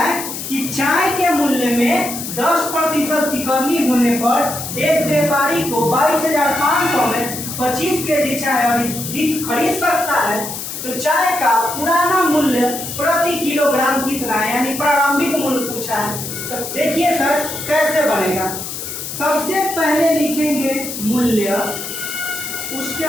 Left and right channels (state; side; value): noise; left; hiss, 7 dB below the sound